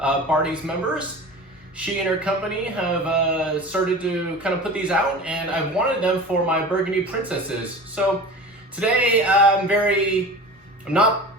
members. She and her company have started to kind of put these out, and I've wanted them for my Burgundy Princesses. So today I'm not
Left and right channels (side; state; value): both; normal; correlation 0.35